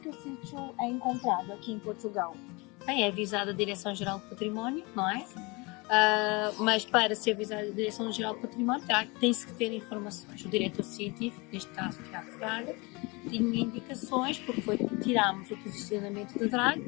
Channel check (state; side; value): quieter; right; 26.8 dB